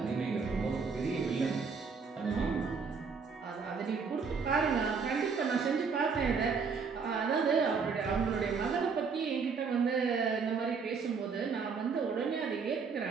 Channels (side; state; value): left; quieter; 5.4 dB